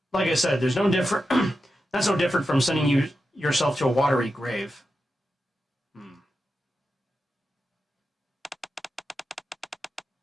Like I said, there's no different... That's no different from sending yourself to a watery grave.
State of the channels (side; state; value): both; normal; correlation 0.90